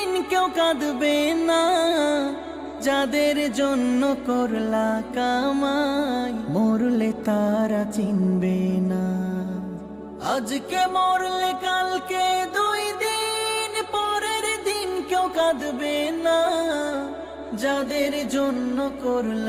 কেউ কাঁদবে না। যাদের জন্য করলা কামাই মরলে তারা চিনবে না। আজকে মরলে কালকে 2 দিন পরের দিন কেউ কাঁদবে না। যাদের জন্য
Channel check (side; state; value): both; identical; correlation 1.00